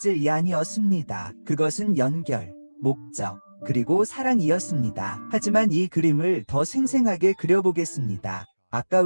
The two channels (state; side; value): inverted; both; correlation -1.00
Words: 아니었습니다. 그것은 연결, 목적, 그리고 사랑이었습니다. 하지만 이 그림을 더 생생하게 그려보겠습니다.